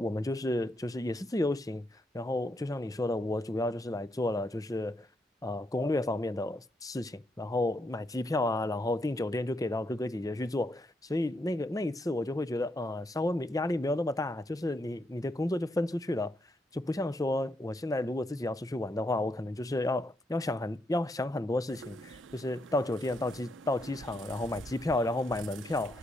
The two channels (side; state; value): both; normal; correlation 0.79